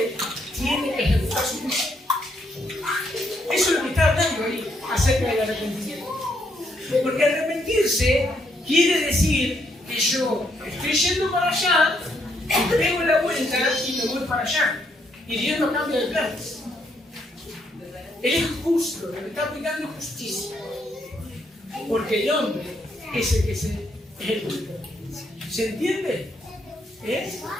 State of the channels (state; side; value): normal; both; correlation 0.74